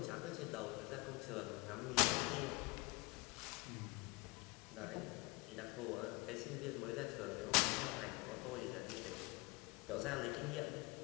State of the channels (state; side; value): quieter; right; 25.6 dB